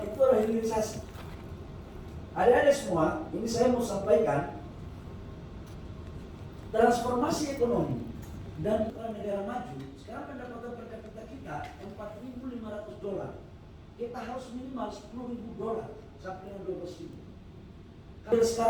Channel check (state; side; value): identical; both; correlation 1.00